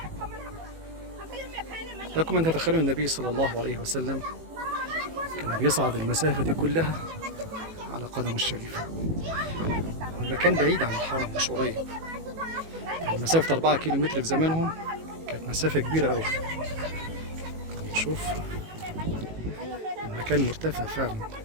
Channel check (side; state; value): left; late; 18 ms